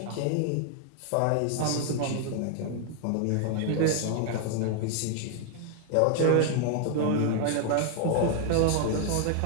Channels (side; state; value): both; different; correlation 0.00